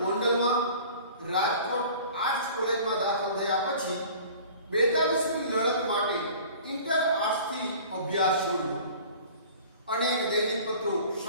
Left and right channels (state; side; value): inverted; both; correlation -0.45